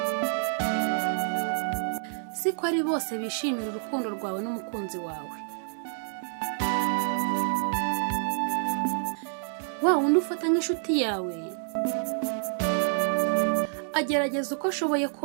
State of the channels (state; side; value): silent; left; digital silence